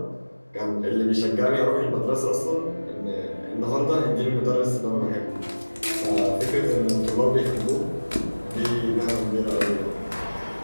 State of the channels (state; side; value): inverted; both; correlation -1.00